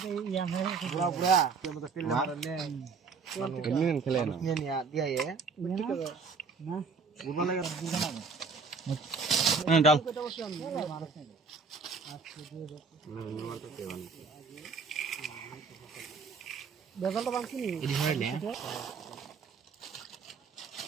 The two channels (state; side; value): quieter; left; 4.9 dB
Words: বুড়া বুড়া মত তেল মারনে এমনি খেলে না নিয়ে নিয়া দিয়া এ না বুড়া লাগে হ্যাঁ ডাল বেজালটা বাংছি নি এডি হইলে